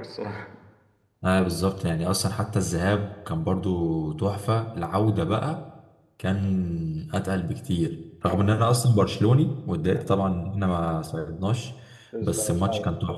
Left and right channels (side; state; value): both; identical; correlation 1.00